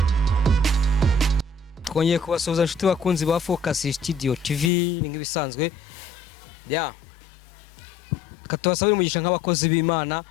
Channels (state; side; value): drops out; right; at 4.7 s